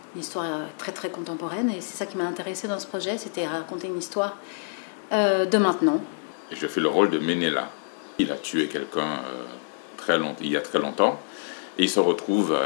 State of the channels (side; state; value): right; silent; 61 dB below the other